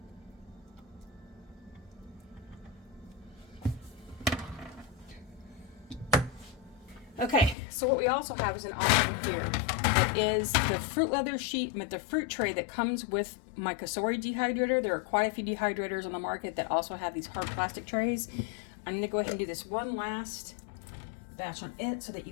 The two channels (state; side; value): drops out; right; at 7.6 s